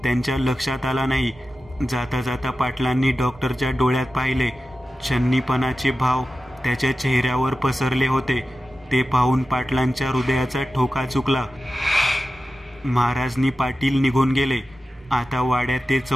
त्यांच्या लक्षात आला नाही. जाता जाता पाटलांनी डॉक्टरच्या डोळ्यात पाहिले. छन्नीपणाचे भाव त्याच्या चेहऱ्यावर पसरले होते. ते पाहून पाटलांच्या हृदयाचा ठोका चुकला. महाराजनी पाटील निघून गेले. आता वाड्यात ते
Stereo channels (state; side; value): normal; both; correlation 0.93